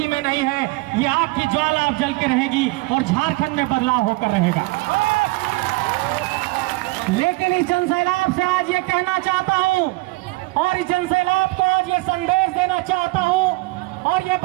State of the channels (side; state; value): left; quieter; 23.3 dB